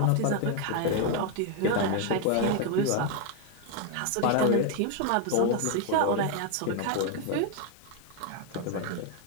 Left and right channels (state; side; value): different; both; correlation 0.01